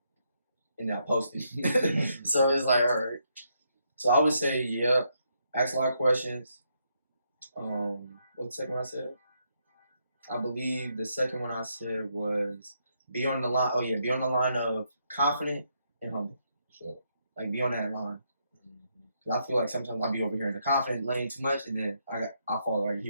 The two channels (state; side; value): inverted; both; correlation -0.77